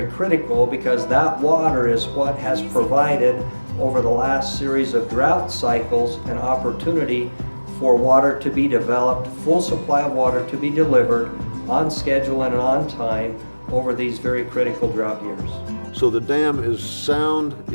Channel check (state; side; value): inverted; both; correlation -1.00